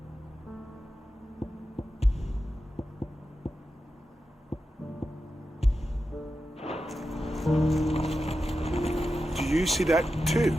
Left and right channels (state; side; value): normal; both; correlation 0.90